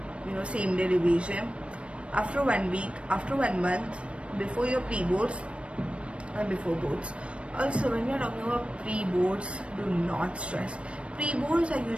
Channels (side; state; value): left; late; 0.060 ms